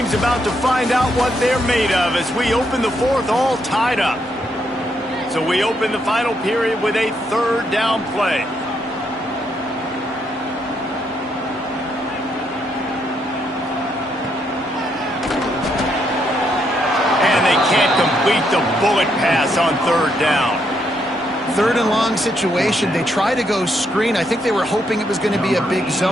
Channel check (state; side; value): normal; both; correlation 0.76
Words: about to find out what they're made of as we open the 4th all tied up. So we open the final period with a 3rd down play. And they can't complete the bullet pass on 3rd down. 3rd and long situation. They try to go screen. I think they were hoping it was going to be a big